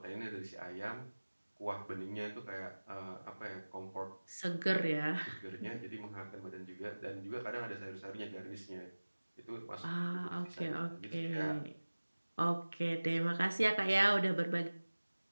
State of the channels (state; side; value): inverted; both; correlation -1.00